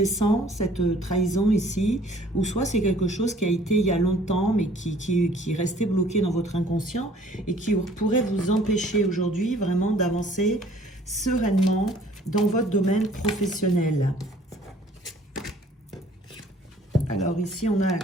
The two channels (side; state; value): both; normal; correlation 0.55